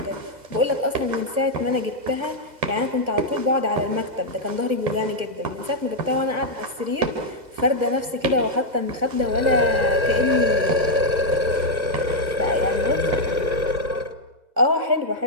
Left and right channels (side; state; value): left; late; 2.0 ms